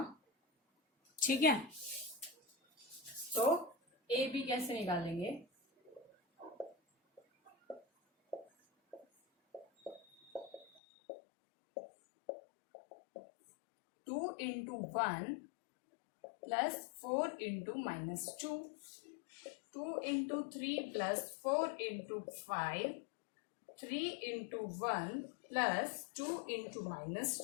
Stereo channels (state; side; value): drops out; right; at 10.8 s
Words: ठीक है, तो ए बी कैसे निकालेंगे, two into 1 plus 4 into -2, 2 into 3 plus 4 into 5, 3 into 1 plus 2 into